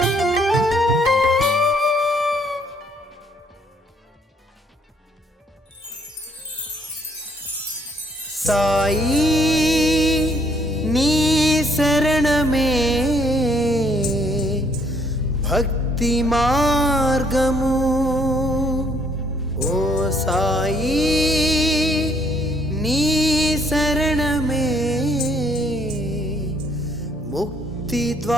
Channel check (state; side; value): normal; both; correlation 0.66